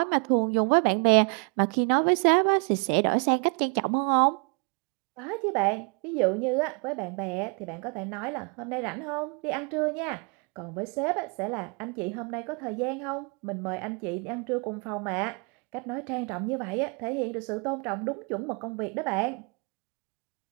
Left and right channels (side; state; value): left; quieter; 34.0 dB